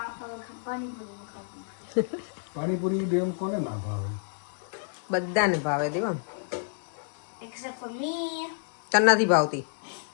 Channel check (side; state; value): right; silent; digital silence